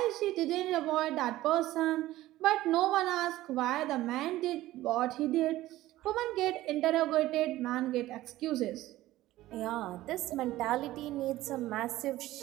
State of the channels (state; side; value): quieter; left; 16.0 dB